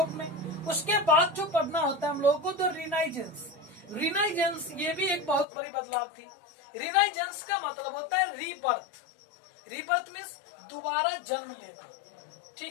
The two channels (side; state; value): right; drops out; at 5.5 s